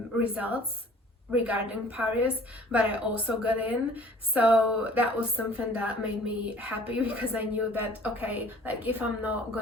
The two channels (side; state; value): both; normal; correlation 0.52